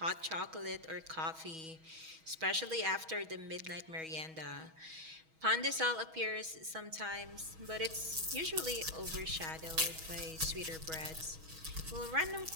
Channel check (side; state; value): left; late; 6.2 ms